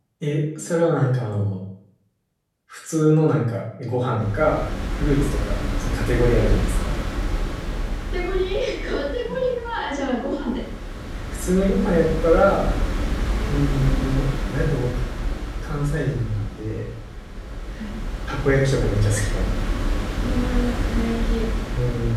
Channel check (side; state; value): both; identical; correlation 1.00